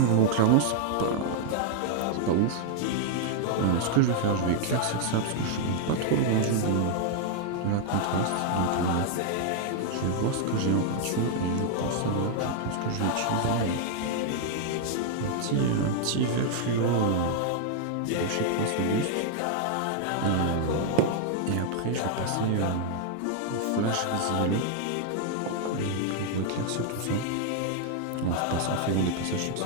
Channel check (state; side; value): different; both; correlation 0.00